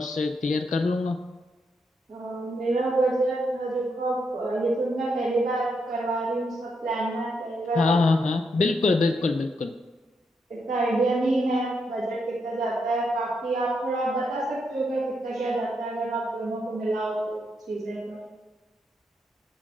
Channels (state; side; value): normal; both; correlation 0.80